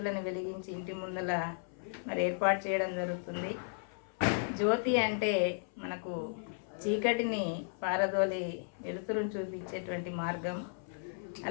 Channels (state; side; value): silent; right; 55 dB below the other